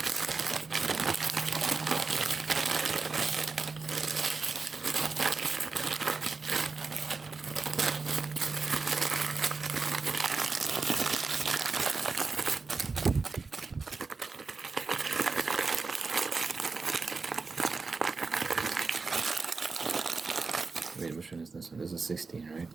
Wait, which one is this one? This is 16, right?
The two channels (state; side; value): quieter; left; 4.4 dB